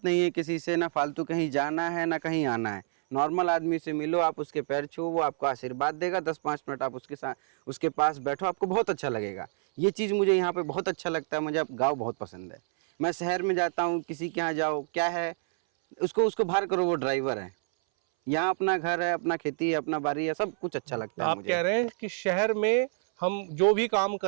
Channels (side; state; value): left; silent; 59 dB below the other